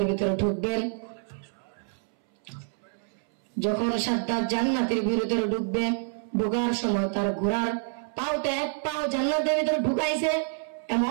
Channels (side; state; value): left; silent; 60 dB below the other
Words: ভিতরে ঢুকবেন, যখন সাদ্দাত জান্নাতের ভিতরে ঢুকবে, ঢোকার সময় তার ঘোড়ার পাওটা এক পাও জান্নাতের ভিতরে ঢুকাইছে।